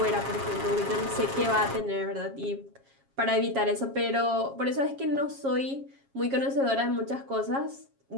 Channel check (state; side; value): late; left; 7.3 ms